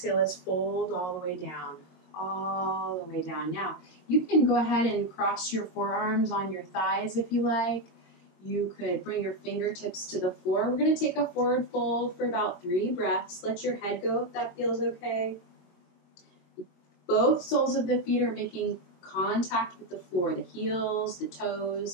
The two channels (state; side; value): late; right; 22 ms